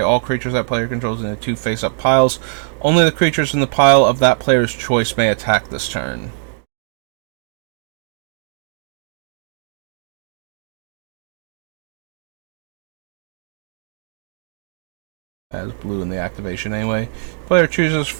all creatures that player controls into 2 face-up piles. Only the creatures in the pile of that player's choice may attack this turn. Has blue in the activation anyway. Player chooses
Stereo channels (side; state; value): left; silent; digital silence